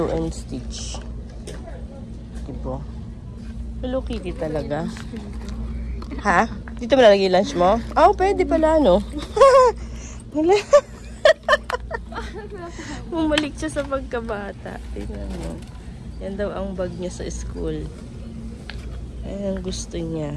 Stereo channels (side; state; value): both; identical; correlation 1.00